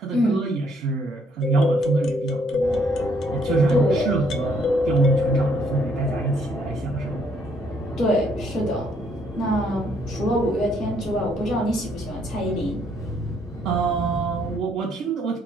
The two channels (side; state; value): both; normal; correlation 0.68